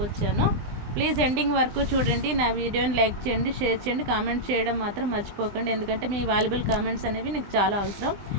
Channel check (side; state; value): left; late; 20 ms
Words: ప్లీజ్ ఎండింగ్ వరకు చూడండి. నా వీడియోని లైక్ చేయండి, షేర్ చేయండి, కామెంట్ చేయడం మాత్రం మర్చిపోకండి. ఎందుకంటే మీ వాల్యుబుల్ కామెంట్స్ అనేవి నాకు చాలా అవసరం.